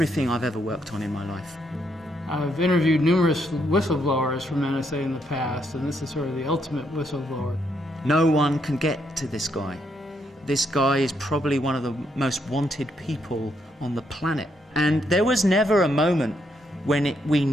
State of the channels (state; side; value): normal; both; correlation 0.76